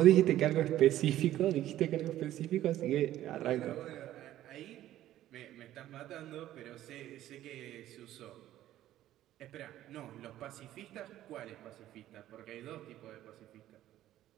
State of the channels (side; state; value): left; quieter; 13.4 dB